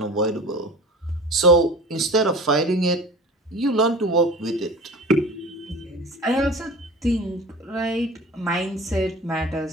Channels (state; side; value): normal; both; correlation 0.38